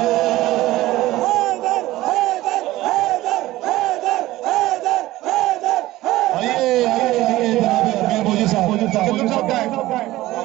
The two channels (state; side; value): quieter; left; 16.8 dB